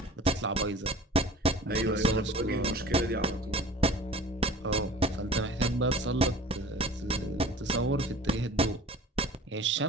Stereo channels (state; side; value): normal; both; correlation 0.43